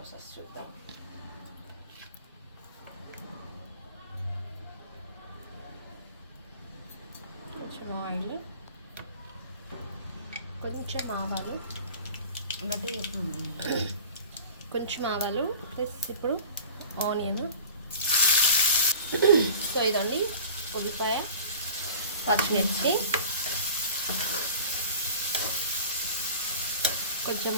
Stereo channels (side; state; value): both; inverted; correlation -0.41